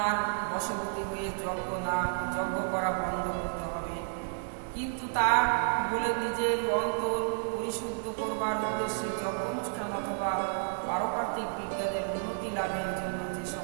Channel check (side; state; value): left; silent; digital silence